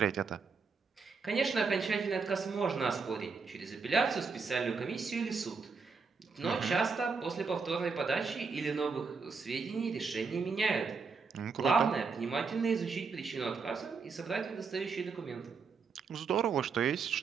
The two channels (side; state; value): left; quieter; 4.9 dB